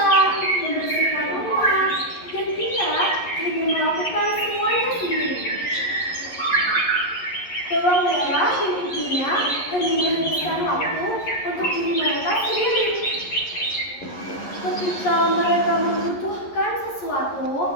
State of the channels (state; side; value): late; right; 11 ms